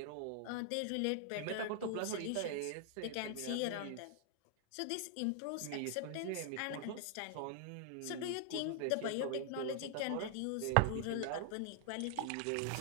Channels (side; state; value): both; different; correlation 0.00